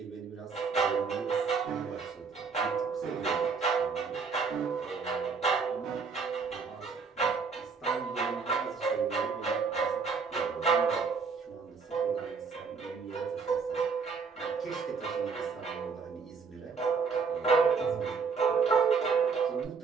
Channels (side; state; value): left; quieter; 5.2 dB